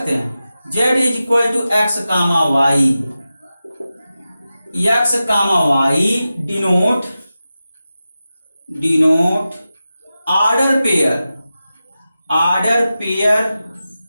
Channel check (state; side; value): inverted; both; correlation -0.93